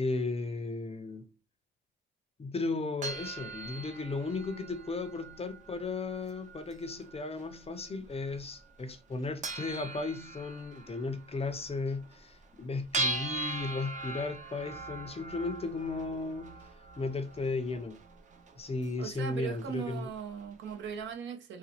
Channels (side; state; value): both; normal; correlation 0.48